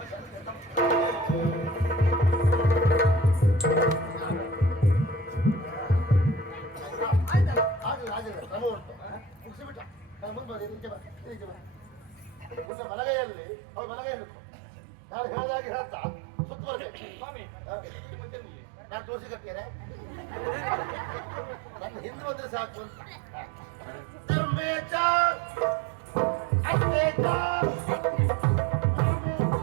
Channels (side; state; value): left; drops out; at 12.7 s